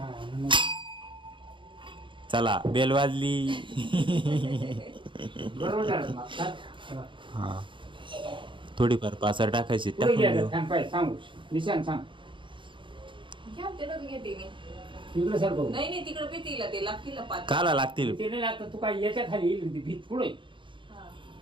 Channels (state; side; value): late; left; 0.24 ms